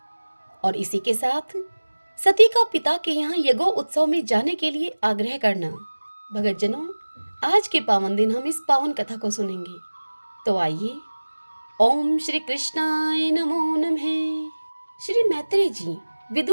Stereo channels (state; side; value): inverted; both; correlation -1.00